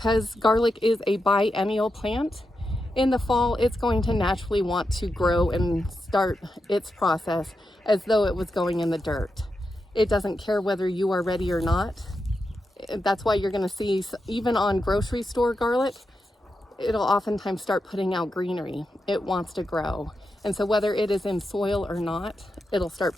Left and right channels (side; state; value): both; normal; correlation 0.87